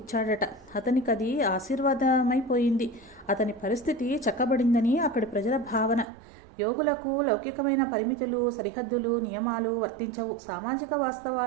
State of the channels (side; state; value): left; drops out; at 6.1 s